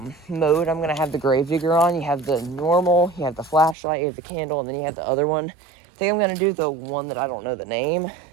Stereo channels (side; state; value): left; drops out; at 3.8 s